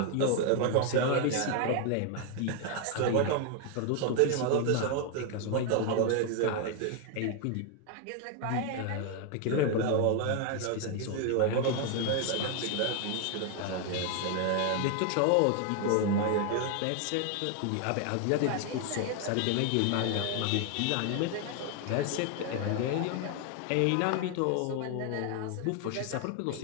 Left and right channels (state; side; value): different; both; correlation 0.00